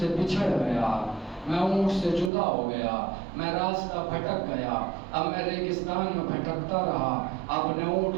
سے بچھڑ گیا, میں اونٹ سے جدا ہو گیا, میں راستہ بھٹک گیا. اب میں ریگستان میں بھٹکتا رہا, اپنے اونٹ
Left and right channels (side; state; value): left; drops out; at 2.3 s